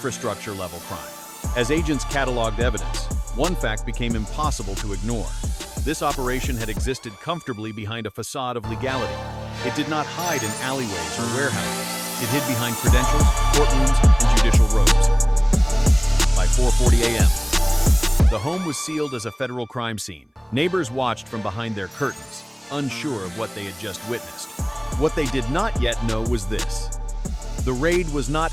crime. As agents cataloged evidence, one fact became impossible to ignore. This operation had existed comfortably behind a facade of legality. It did not hide in alleyways or warehouses. It hid behind credentials, courtrooms, and judicial robes. By 4:40 a.m., the home was sealed as a federal crime scene. Neighbors watched from behind their curtains, unsure of what they had just witnessed. What they did not yet know was this. The raid was not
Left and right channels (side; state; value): both; identical; correlation 1.00